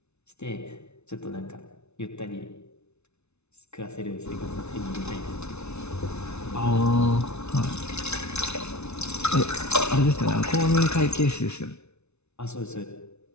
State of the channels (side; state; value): right; late; 0.81 ms